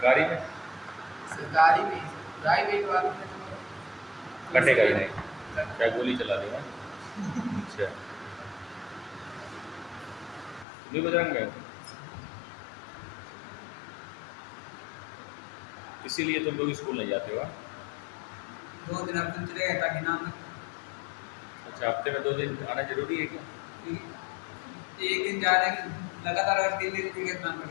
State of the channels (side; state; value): right; drops out; at 10.7 s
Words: में सरकारी में प्राइवेट वालों में तो कटेगा ही नहीं क्या गोली चला देगा। अच्छा तुम भी बजरंग गए हो? इसीलिए तुम लोग स्कूल नहीं जाते हो हाँ? 2 दिन अब चले गए ताकि ना अच्छा, हफ्ते में 2 दिन आना जरूरी है क्या? एक दिन जा रहे हैं लगातार, अगर 3 दिन भी इतना पड़